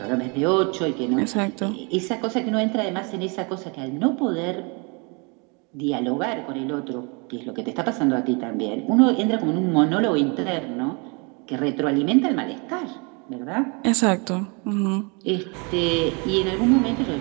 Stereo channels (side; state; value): left; quieter; 32.2 dB